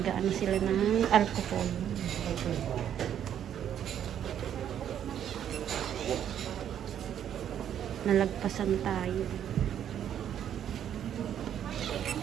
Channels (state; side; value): quieter; left; 9.8 dB